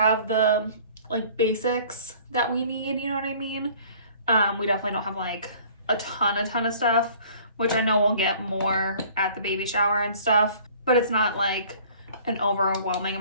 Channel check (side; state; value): both; inverted; correlation -0.51